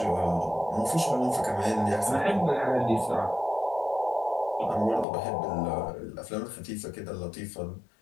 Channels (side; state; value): right; drops out; at 5.1 s